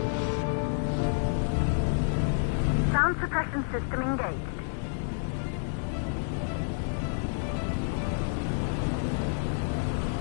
Sound suppression system engaged.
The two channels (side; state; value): right; silent; digital silence